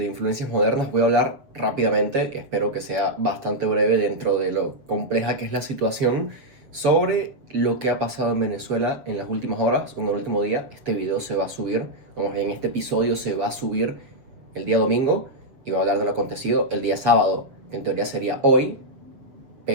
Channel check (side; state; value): left; late; 7.3 ms